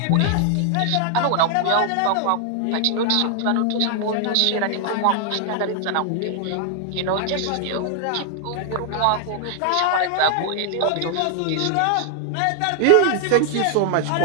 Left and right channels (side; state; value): both; different; correlation 0.00